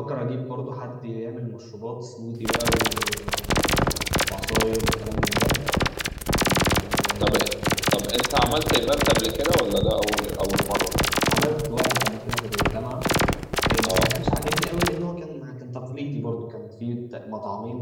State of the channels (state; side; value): identical; both; correlation 1.00